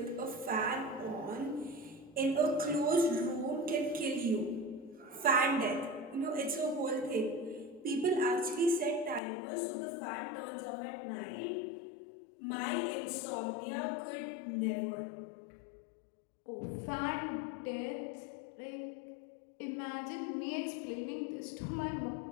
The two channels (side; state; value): right; drops out; at 9.2 s